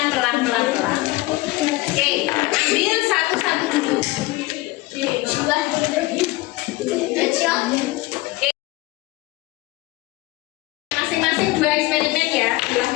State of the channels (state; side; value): quieter; right; 19.9 dB